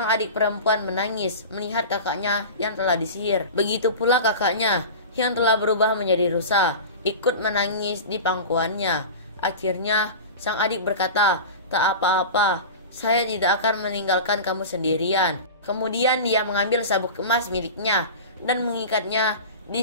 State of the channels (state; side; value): inverted; both; correlation -0.31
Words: adik perempuan menangis melihat kakaknya yang telah disihir. Begitu pula kakaknya yang telah berubah menjadi rusa ikut menangis di pangkuannya. Akhirnya sang adik berkata, "Tak apa-apa, saya tidak akan meninggalkan kamu sendirian." Kemudian dia mengambil sabuk emas miliknya dan mengikatnya